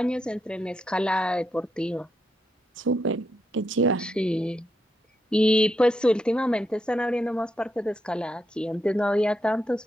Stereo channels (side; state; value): both; normal; correlation 0.82